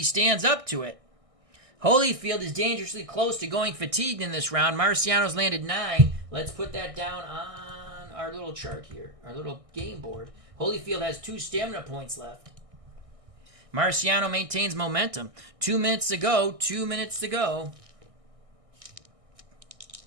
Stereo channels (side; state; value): left; late; 1.6 ms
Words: stands up to it. Holyfield is dangerously close to going fatigued in this round. Marciano's landed 9. Let's put that down on our little chart here, our little game board. Holyfield has 2 stamina points left. Marciano maintains momentum. 2 minutes to go. 2 minutes to go.